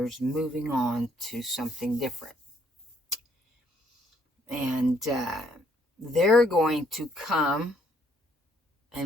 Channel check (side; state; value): both; normal; correlation 0.68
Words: moving on to something different, and they're going to come